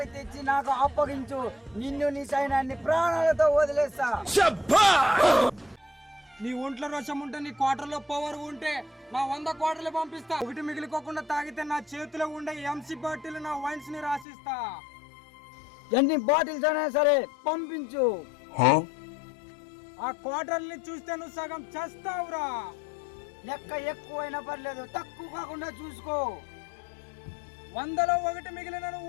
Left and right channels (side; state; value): right; drops out; at 14.2 s